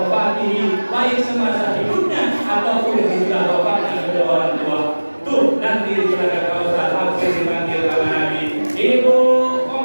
baik semasa hidupnya ataupun sesudah wafatnya kedua orang tua. Tuh, nanti di telaga Kautsar langsung dipanggil sama Nabi. Ibu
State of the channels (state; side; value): inverted; both; correlation -1.00